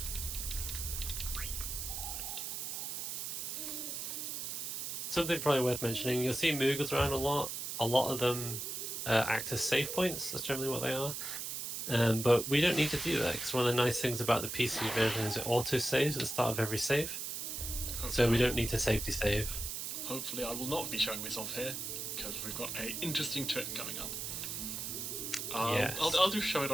Something probably worth mentioning, you'll see Moogles around a lot. A lot of them act as save points, that's generally what they are. But we don't need to do that, because one of the nice things about the PC version is it auto-saves at the start of every save. So we don't need to safety save. Hopefully I will not be showing this off here, because we've got an interesting trick coming up. Yes. I'll just show it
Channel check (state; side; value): noise; right; hiss, 4 dB below the sound